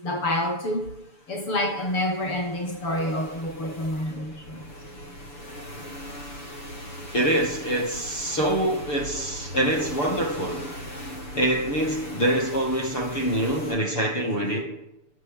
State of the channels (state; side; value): late; right; 6.9 ms